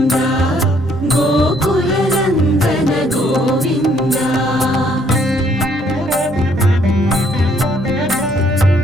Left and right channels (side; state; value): both; normal; correlation 0.66